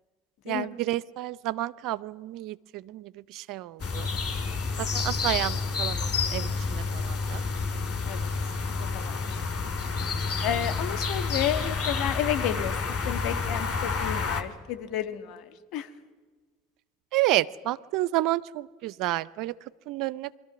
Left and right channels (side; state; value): both; normal; correlation 0.32